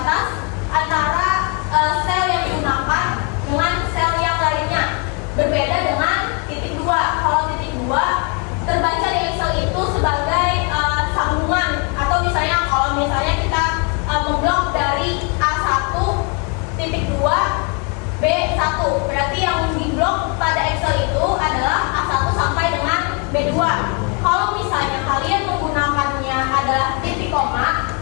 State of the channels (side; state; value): right; quieter; 34.1 dB